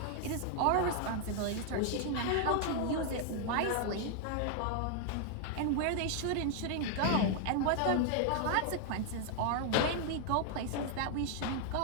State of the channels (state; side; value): different; both; correlation 0.00